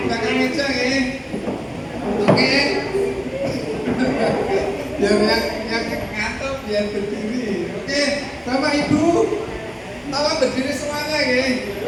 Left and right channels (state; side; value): identical; both; correlation 1.00